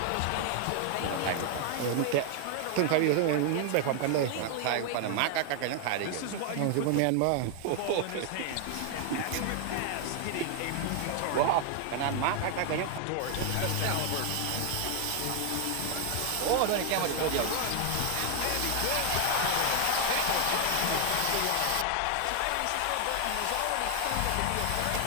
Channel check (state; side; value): different; both; correlation 0.00